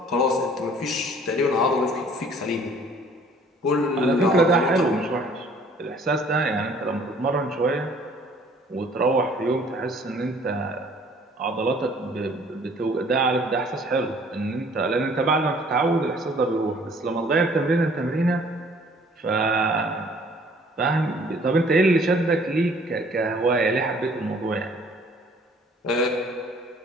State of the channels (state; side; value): normal; both; correlation 0.56